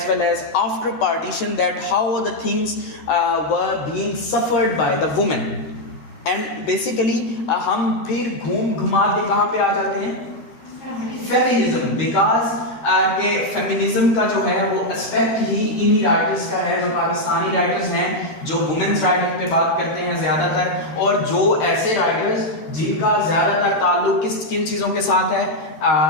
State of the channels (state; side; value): late; right; 13 ms